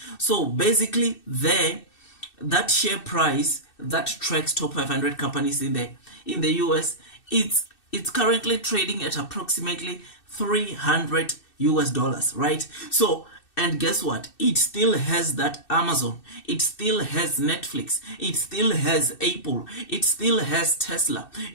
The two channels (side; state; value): right; late; 2.6 ms